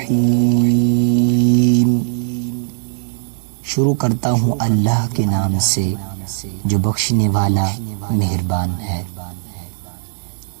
शुरू करता हूँ अल्लाह के नाम से जो बख्शने वाला मेहरबान है।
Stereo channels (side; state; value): left; silent; 68 dB below the other